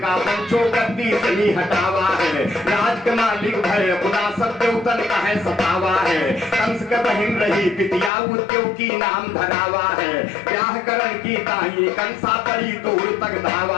पंचो गद्दी से ही हटावा है। राज के मालिक भय खुदा सत्यवतन का है सतावा है, कंस के बहिन रही पितिया उद्योग की नाम धरावा है। ब्याह करण की ताई कंसा परी दूर तक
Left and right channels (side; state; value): right; drops out; at 8.1 s